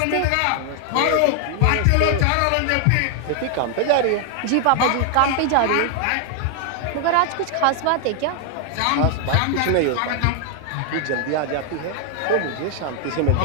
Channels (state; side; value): different; both; correlation 0.00